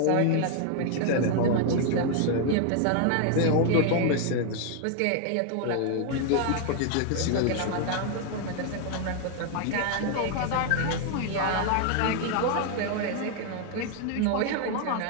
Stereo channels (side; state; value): both; different; correlation 0.00